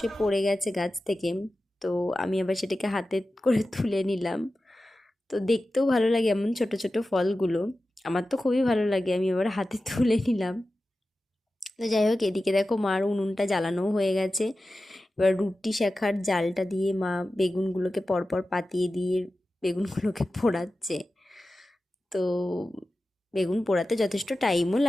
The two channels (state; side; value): normal; both; correlation 0.94